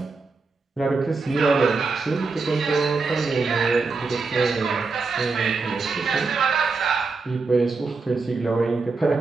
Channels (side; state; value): left; quieter; 4.2 dB